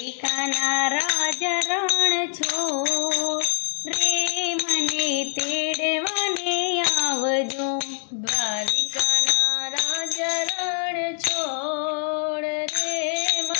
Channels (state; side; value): silent; right; digital silence